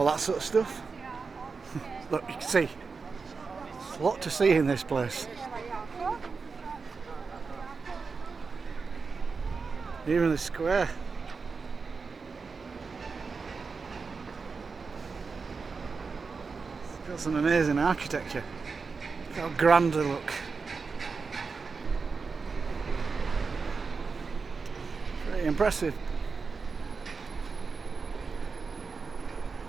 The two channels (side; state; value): left; quieter; 4.8 dB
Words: that sort of stuff. Look, you can see, there's a lot to see in this place. Even the square. Got some amazing architecture. Look how grand they look. Very impressive.